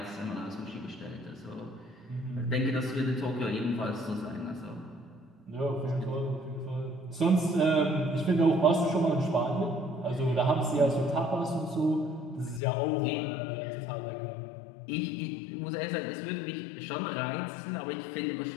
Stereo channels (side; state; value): right; drops out; at 12.6 s